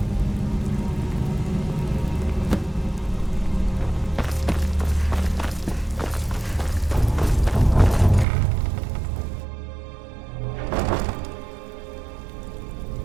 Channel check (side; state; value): left; drops out; at 8.2 s